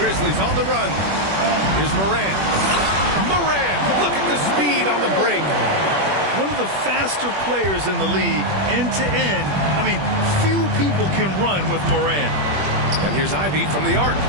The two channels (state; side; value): late; left; 21 ms